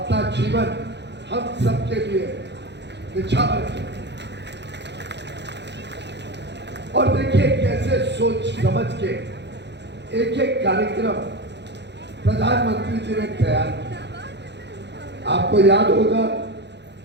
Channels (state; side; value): late; left; 0.50 ms